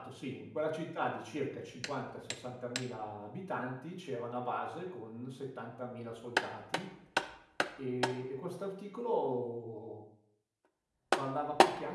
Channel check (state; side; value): identical; both; correlation 1.00